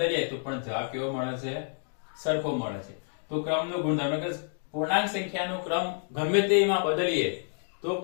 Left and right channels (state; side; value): silent; right; 59 dB below the other